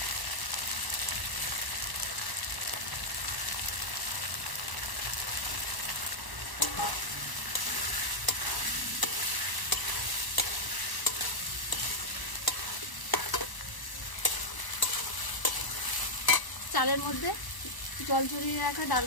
চালের মধ্যে জল ঝরিয়ে রাখা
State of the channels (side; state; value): right; late; 1.0 ms